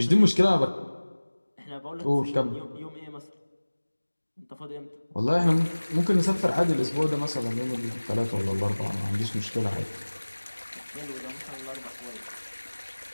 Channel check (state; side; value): inverted; both; correlation -1.00